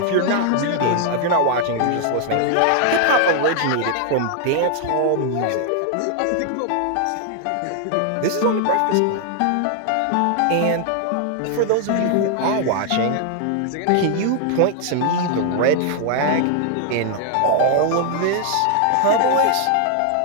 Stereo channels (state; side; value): different; both; correlation 0.00